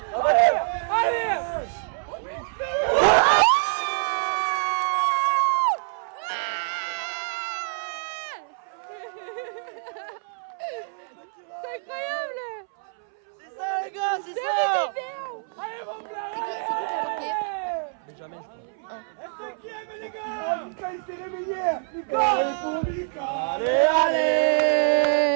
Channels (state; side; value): silent; left; 61 dB below the other